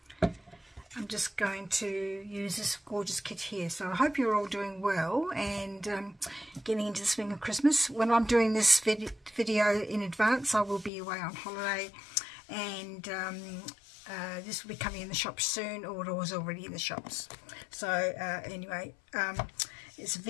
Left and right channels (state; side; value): drops out; right; at 10.9 s